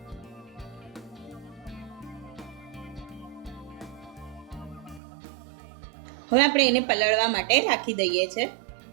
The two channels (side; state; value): left; drops out; at 5.0 s